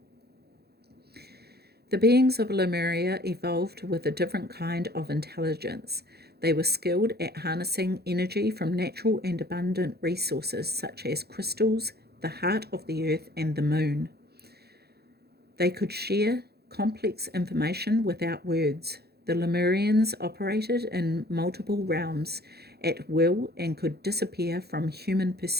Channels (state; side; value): late; left; 0.47 ms